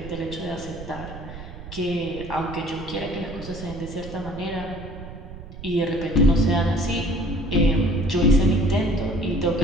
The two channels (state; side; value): noise; right; rumble, 13 dB below the sound